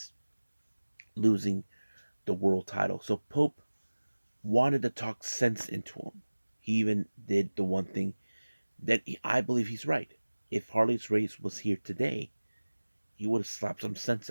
losing the world title. So Pope wanted to talk sense into him. He even did the one thing that I believe he's right. If Harley's Race was here today, he would have slapped some sense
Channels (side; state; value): both; inverted; correlation -1.00